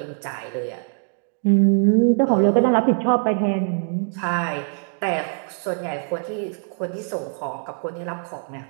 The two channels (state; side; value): silent; left; 57 dB below the other